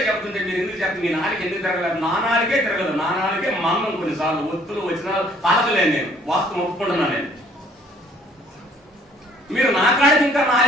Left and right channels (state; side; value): normal; both; correlation 0.59